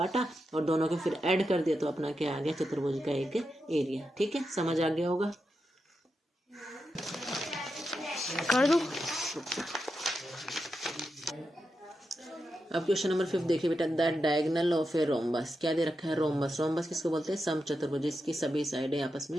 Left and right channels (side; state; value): both; normal; correlation 0.87